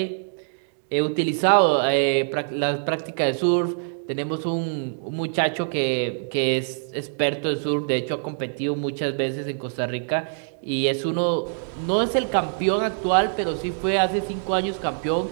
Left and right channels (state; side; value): silent; left; digital silence